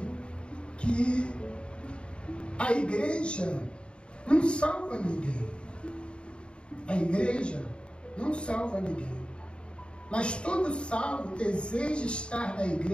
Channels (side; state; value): right; late; 0.054 ms